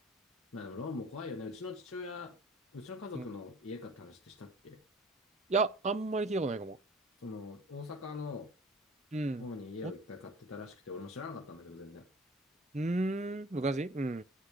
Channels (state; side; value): normal; both; correlation 0.46